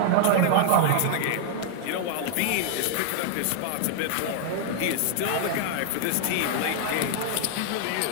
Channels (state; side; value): different; both; correlation 0.00